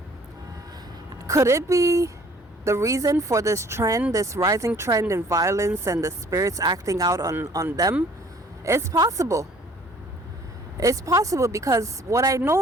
Could it be the reason for this trend, this rising trend in violence and the spirits acting out on them? It's possible. It's possible because what I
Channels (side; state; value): both; normal; correlation 0.55